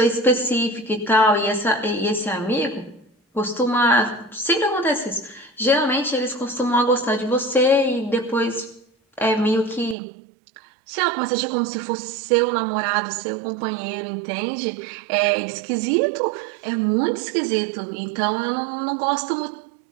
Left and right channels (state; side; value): drops out; left; at 10.0 s